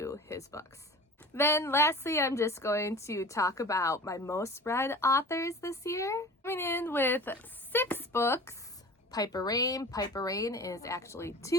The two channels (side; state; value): both; normal; correlation 0.38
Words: his books. Then lastly, I'm just going to talk about my most read authors this year. Coming in with 6 books, Piper Rain. Piper Rain is actually